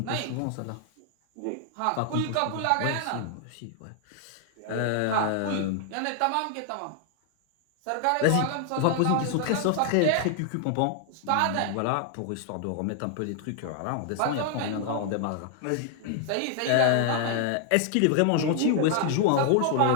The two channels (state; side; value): different; both; correlation 0.00